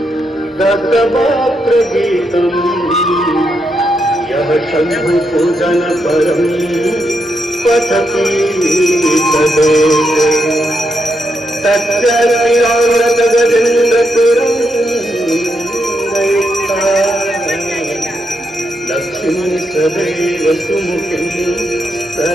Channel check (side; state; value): both; normal; correlation 0.81